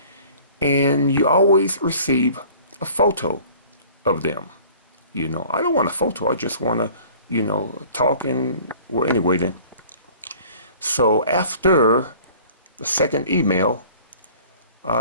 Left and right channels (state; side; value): inverted; both; correlation -0.49